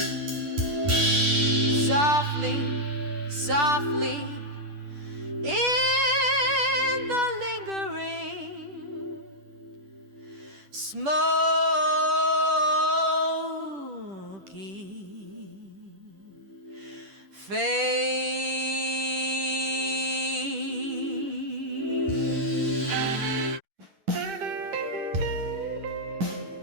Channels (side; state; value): left; late; 10 ms